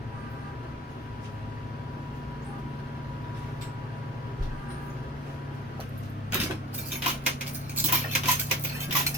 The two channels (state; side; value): normal; both; correlation 0.37